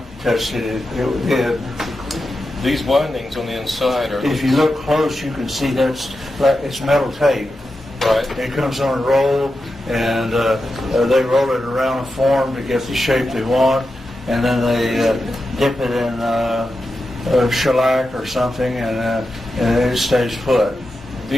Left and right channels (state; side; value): normal; both; correlation 0.89